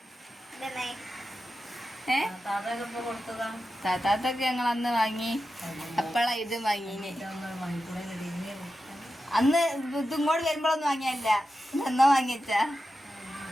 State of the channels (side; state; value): both; normal; correlation 0.91